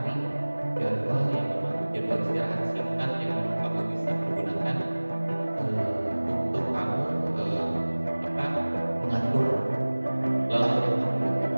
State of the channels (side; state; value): both; inverted; correlation -1.00